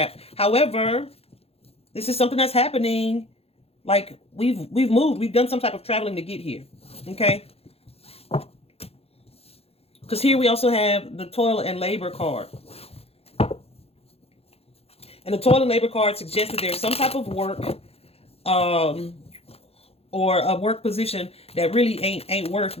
However, this is something that's happening. Like we've moved, we've done some type of traveling to get here. Okay. Because here we also have the Toil and Labor card. And the Toil and Labor card suggests that there's some type of work or a work position that really ain't worth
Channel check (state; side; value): late; right; 0.29 ms